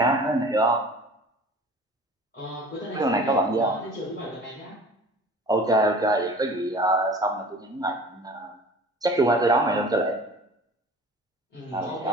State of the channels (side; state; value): both; normal; correlation 0.44